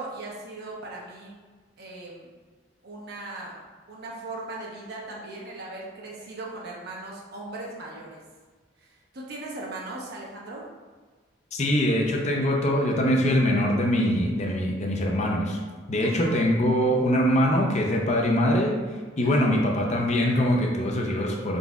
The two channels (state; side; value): normal; both; correlation 0.61